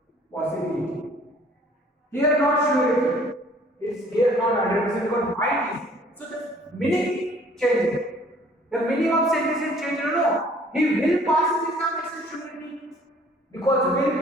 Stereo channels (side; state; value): both; normal; correlation 0.56